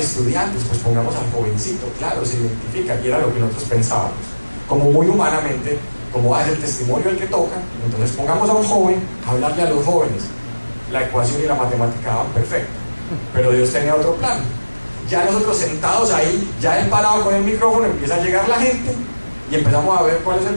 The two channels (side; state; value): both; inverted; correlation -1.00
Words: pues pongamos al jovencito, claro, se identifica, y era lo que nosotros pensábamos, como muy humanamente, como es el testimonio el que toca, entonces pongamos a un joven a hablarle a los jóvenes. La ecuación y la matemática daban perfecto, pero Dios tenía otro plan. Ya nosotros sentados ahí, ya él parado con el micrófono, empieza a llegar la gente y empezamos a ver cuál es el